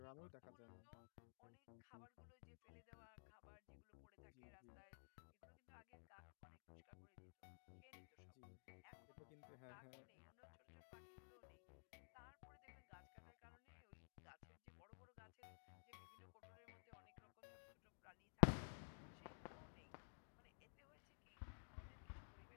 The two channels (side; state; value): right; silent; digital silence